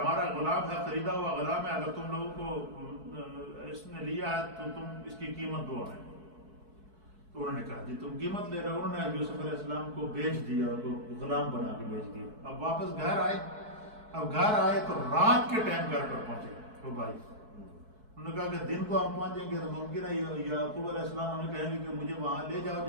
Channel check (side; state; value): left; late; 4.6 ms